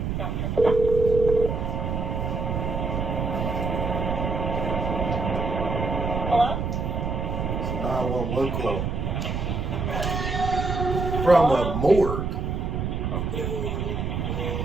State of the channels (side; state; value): right; noise; rumble, 2 dB below the sound